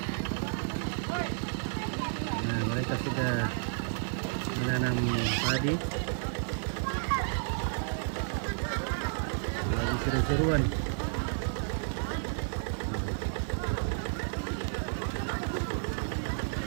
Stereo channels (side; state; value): left; silent; digital silence